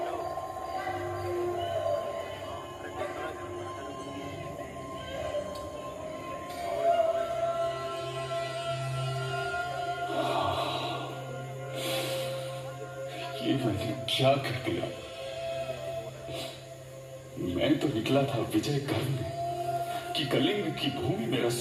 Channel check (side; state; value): both; identical; correlation 1.00